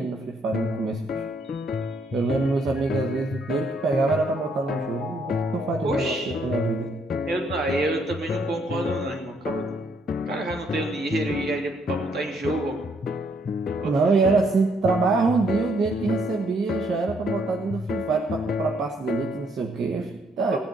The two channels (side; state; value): both; normal; correlation 0.70